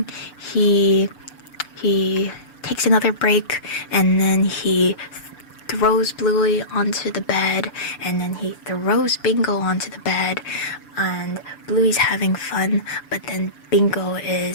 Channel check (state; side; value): late; right; 6.8 ms